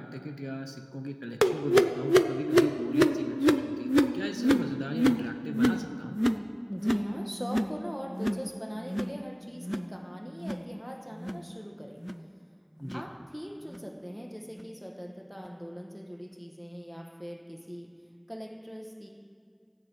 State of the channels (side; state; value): both; identical; correlation 1.00